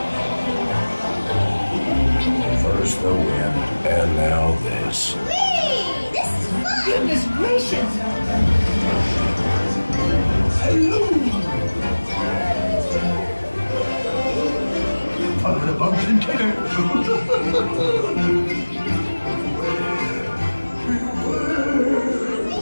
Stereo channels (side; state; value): both; inverted; correlation -1.00